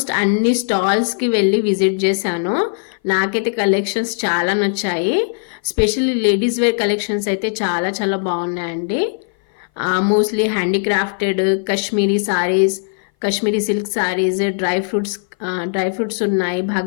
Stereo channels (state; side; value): silent; right; 59 dB below the other